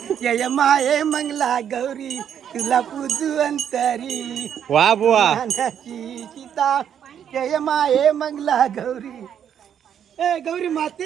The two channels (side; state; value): left; quieter; 9.0 dB